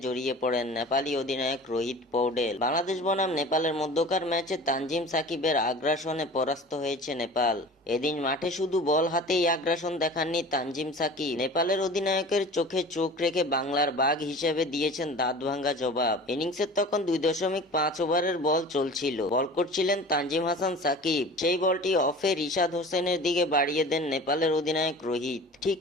পড়েন নেপালি অধিনায়ক রোহিত পৌডেল। বাংলাদেশ বনাম নেপালের মধ্যকার ম্যাচে তানজিম সাকিবের আগ্রাসনে পরাস্ত হয়েছে নেপাল। এদিন মাঠে শুধু বল হাতেই আগ্রাসন দেখাননি তানজিম সাকিব, নেপালের অধিনায়কের চোখে চোখ রেখে বাংলার বাঘ হিসেবে দিয়েছেন দাঁত ভাঙ্গা জবাব। ইনিংসের তখন 2.5 ওভারের বল চলছিল, বল করছিলেন তানজিম হাসান সাকিব। সেই বলটি অফে রিশাদ হোসেনের দিকে বাড়িয়ে দেন নেপালের অধিনায়ক রোহিত। ঠিক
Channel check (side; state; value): both; normal; correlation 0.40